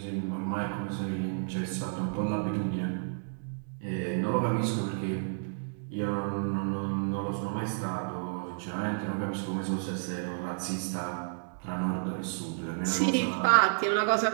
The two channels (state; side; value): silent; left; digital silence